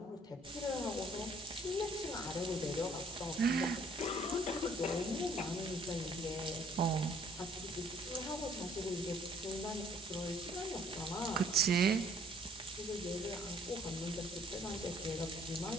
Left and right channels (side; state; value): both; normal; correlation 0.60